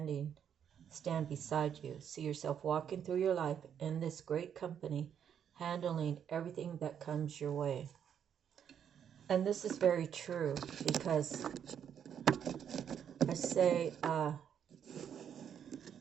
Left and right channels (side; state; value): left; quieter; 8.6 dB